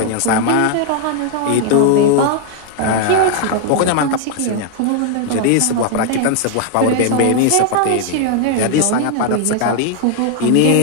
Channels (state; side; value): different; both; correlation 0.00